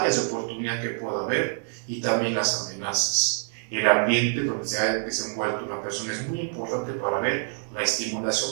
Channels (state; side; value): silent; left; 61 dB below the other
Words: de oportunidad que pueda haber y también las amenazas. El ambiente donde se ha desenvuelto una persona es muy importante para ver la